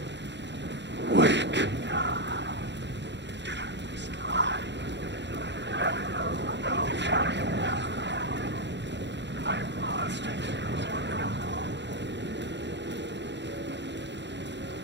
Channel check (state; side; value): late; left; 0.52 ms